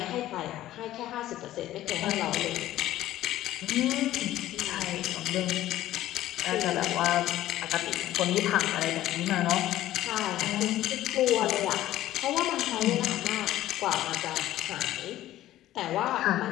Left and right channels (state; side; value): quieter; right; 14.1 dB